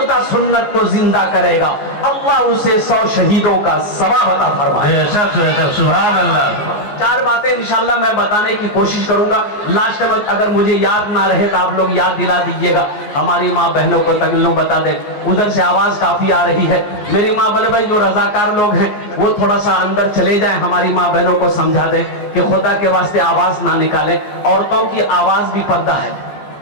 سنت کو زندہ کرے گا اللہ اسے 100 شہیدوں کا ثواب عطا فرمائے. بے شک بے شک. سبحان اللہ. 4 باتیں انشاءاللہ میں بتانے کی کوشش کروں گا. لاسٹ میں اگر مجھے یاد نہ رہے تو آپ لوگ یاد دلا دیجئے گا. ہماری ماں بہنوں کو تکلیف بتا دیں. ادھر سے آواز کافی آ رہی ہے. میری ماں بڑے بھائی جو رضاکار لوگ ہیں وہ تھوڑا سا اندر چلے جائیں، ہماری ماں بہنوں کو سمجھا دیں کہ خدا کے واسطے آواز نہ نکالیں. عورتوں کی آواز بھی پردہ ہے،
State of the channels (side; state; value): right; late; 14 ms